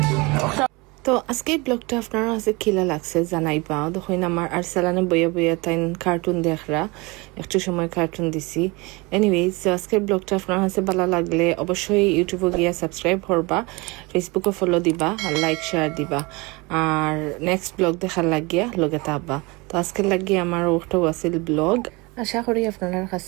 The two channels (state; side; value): quieter; left; 25.6 dB